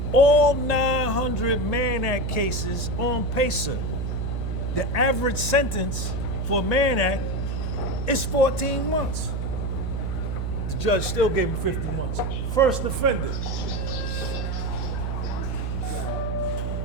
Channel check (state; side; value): noise; right; hum, 1 dB below the sound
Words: all 900 Mann Act cases on PACER. The average sentence for a Mann Act is 14 months. The judge still gave him 50 months. First offender.